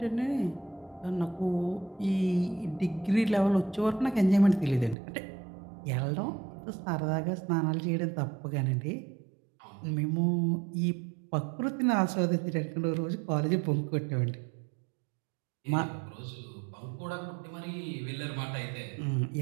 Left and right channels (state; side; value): drops out; left; at 5.0 s